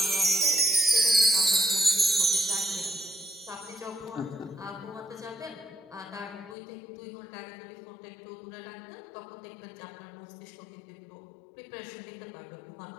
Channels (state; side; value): drops out; right; at 6.6 s